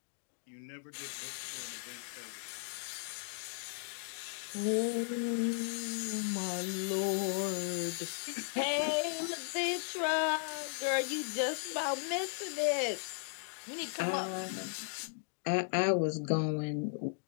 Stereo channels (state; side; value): silent; right; digital silence